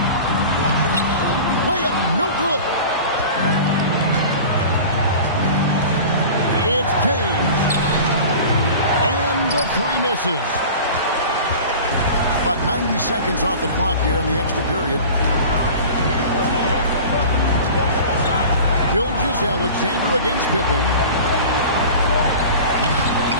Layup, no good. It's James. And the 3 misses. About 90 seconds off the clock here in the extra period. Gilgeous-Alexander against Pippen.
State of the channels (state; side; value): inverted; both; correlation -0.38